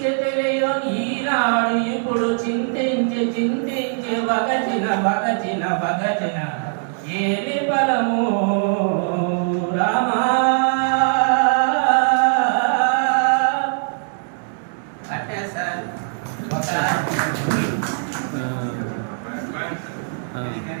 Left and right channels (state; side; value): silent; left; 65 dB below the other